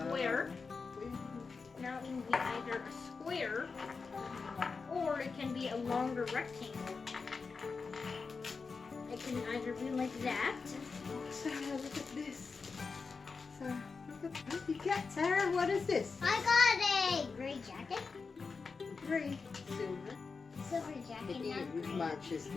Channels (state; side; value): quieter; right; 4.7 dB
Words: Now it can be either a square or it can be a longer rectangle. It can either be like that. Sarah, look at this. Sarah, look at what you got, Sarah. What is this? I got a gray jacket. Gray, silver. Silver jacket. It matches